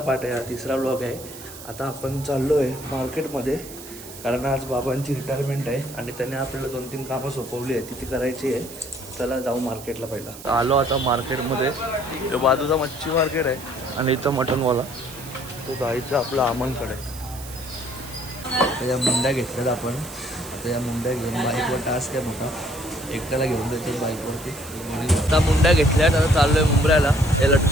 आहे, हा तिसरा ब्लॉग आहे। आता आपण चाललो आहे मार्केटमध्ये, कारण आज बाबांची रिटायरमेंट आहे आणि त्याने आपल्याला 2-3 कामं सोपवली आहे, ती करायची आहे। चला जाऊ मार्केटला। पहिला आलो आता मार्केटमध्ये, तो बाजूचा मच्छी मार्केट आहे आणि इथं मटनवाला तो जायचं आपलं अमनकडे। त्या मुंड्या घेतल्यात आपण, आता या मुंड्या घेऊन बाईकवर टास्क आहे मोठा, एकट्याला घेऊन जायचं बाईकवरती। आता मुंड्या घेतल्यात, आता चाललो आहे मुंबऱ्याला। हे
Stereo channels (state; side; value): noise; right; hiss, 15 dB below the sound